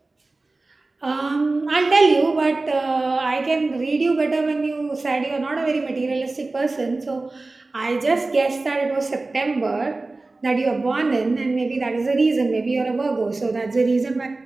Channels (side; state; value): left; quieter; 3.3 dB